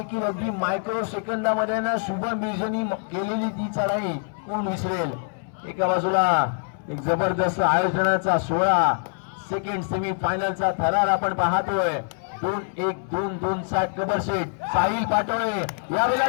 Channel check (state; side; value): silent; right; 62 dB below the other